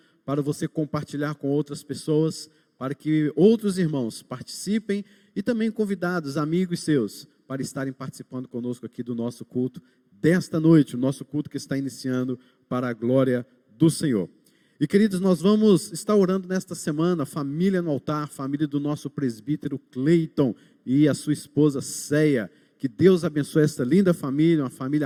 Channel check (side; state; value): both; identical; correlation 1.00